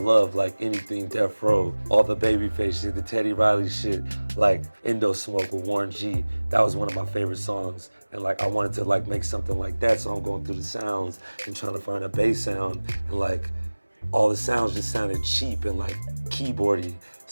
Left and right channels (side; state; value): both; inverted; correlation -1.00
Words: like anything Death Row, all the Babyface shit, the Teddy Riley shit, like Indo Smoke with Warren G. That was one of my favorite songs, and like I wanted to like make something like that, so I'm going through the sounds and trying to find a bass sound, and like all the sounds just sounded cheap and like keyboardy,